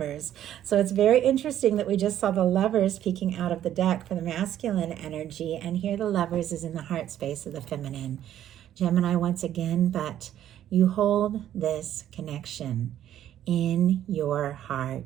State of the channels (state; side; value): quieter; left; 11.4 dB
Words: So it's very interesting that we just saw the Lovers peeking out of the deck for the masculine energy, and here the Lovers is in the heart space of the feminine. Gemini once again, but you hold this connection in your